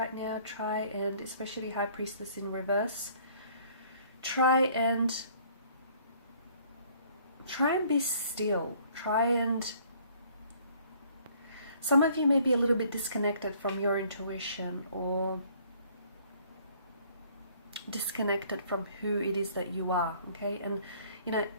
now, try and, especially High Priestess in reverse, try and be still. Some of you may be a little bit disconnected from your intuition, or disconnected from who it is that you are, okay? And, you know,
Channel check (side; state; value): both; inverted; correlation -0.58